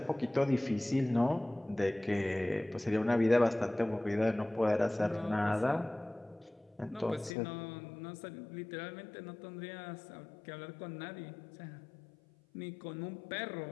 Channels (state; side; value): drops out; right; at 7.3 s